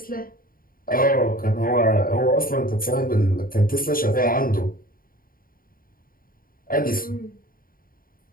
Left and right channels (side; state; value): right; late; 0.41 ms